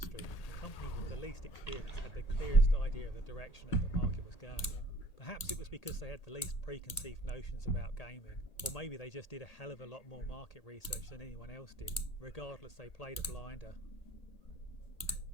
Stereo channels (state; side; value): late; right; 1.8 ms